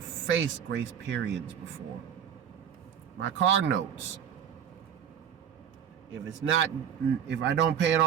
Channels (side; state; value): left; quieter; 8.7 dB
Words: faced grace periods before. My car notes. If I don't pay it